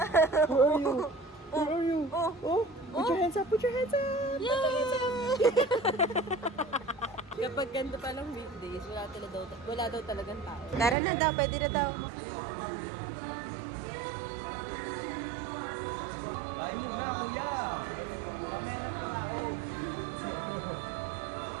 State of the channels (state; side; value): drops out; left; at 11.0 s